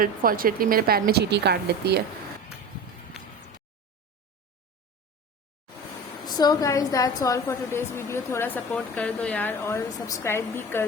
मेरे पैर में चींटी काट लेती है। So guys that's all for today's video. थोड़ा सपोर्ट कर दो यार, और सब्सक्राइब भी कर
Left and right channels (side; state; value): both; normal; correlation 0.31